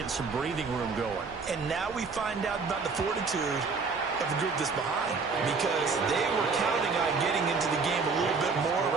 some breathing room going. And now we find out about the fortitude of the group that's behind, because they were counting on getting into the game a little bit more,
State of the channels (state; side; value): quieter; left; 4.7 dB